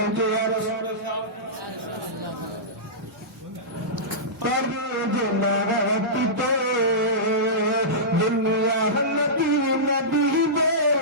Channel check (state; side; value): normal; both; correlation -0.17